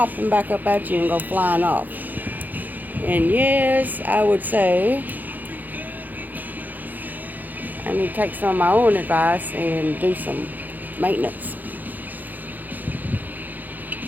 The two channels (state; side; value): late; left; 0.084 ms